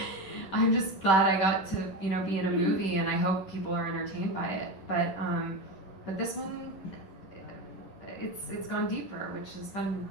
I'm just glad I got to, be in a movie, and I hope people are entertained by it. But this one, it's gone deeper, which has been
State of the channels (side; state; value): right; late; 10 ms